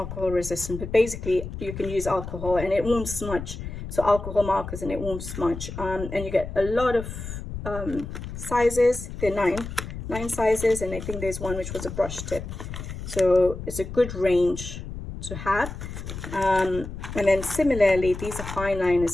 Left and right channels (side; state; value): left; noise; rumble, 8 dB below the sound